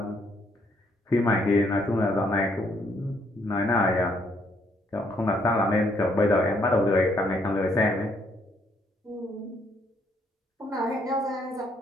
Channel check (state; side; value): normal; both; correlation 0.70